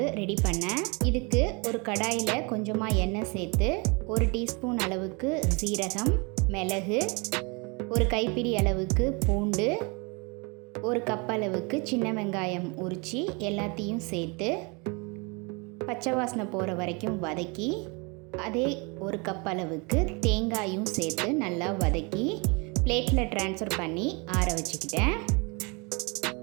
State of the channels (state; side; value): quieter; left; 30.1 dB